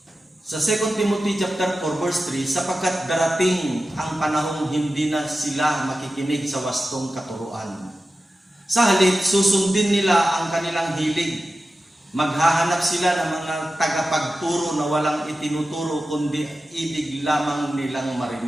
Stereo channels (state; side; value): normal; both; correlation 0.93